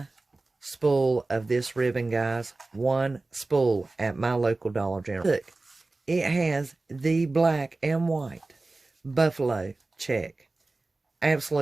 spool of this ribbon, guys. One spool at my local Dollar General. Look, it has the black and white Buffalo Check.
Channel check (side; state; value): left; quieter; 3.3 dB